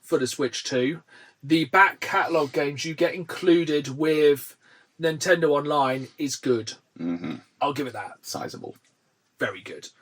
for the Switch 2. The back catalogue games you get included with Nintendo Online is good. Mm-hmm. I'll give it that. Sizable. Very good.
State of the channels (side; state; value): both; identical; correlation 1.00